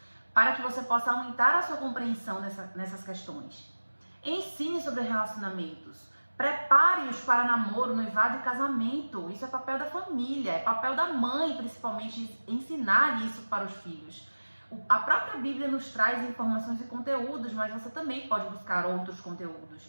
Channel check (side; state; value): both; inverted; correlation -1.00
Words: para que você possa aumentar a sua compreensão nessas questões. Ensine sobre relacionamentos, prepare-os para namoro, noivado e casamento. Isso é papel da família, é papel da mãe, principalmente, ensinar isso para os filhos. A própria Bíblia nos traz informações e conteúdos, mas você também pode buscar outros conteúdos